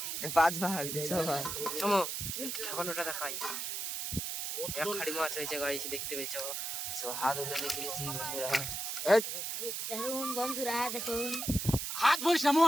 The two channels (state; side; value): noise; right; hiss, 3 dB below the sound